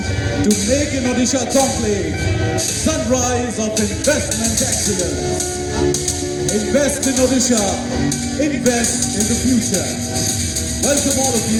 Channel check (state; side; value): identical; both; correlation 1.00